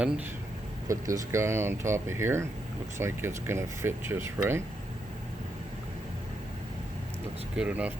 put this guy on top of here. Looks like it's gonna fit just right. Looks good enough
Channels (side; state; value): both; normal; correlation 0.81